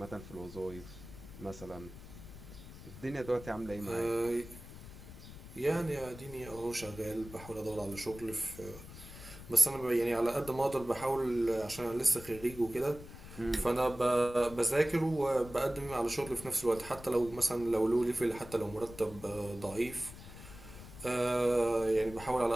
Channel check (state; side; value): noise; left; rumble, 15 dB below the sound